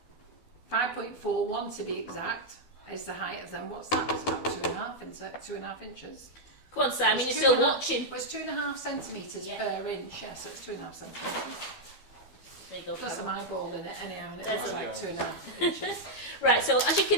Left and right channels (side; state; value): right; late; 12 ms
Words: 5.41 to be exact, is the height of them. What's that? It's about 2.5 inches. Come on, Simon, you're still watching. Well, it's 2.5 centimetres Yeah. per inch, yeah, so it's 2.5 centimetres. There you go. Plus Carol. an eyeball in it anyhow, and it There's looks a- like 2.5 inches. Right, so as you